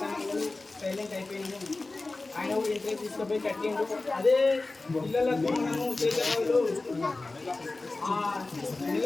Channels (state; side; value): quieter; right; 3.3 dB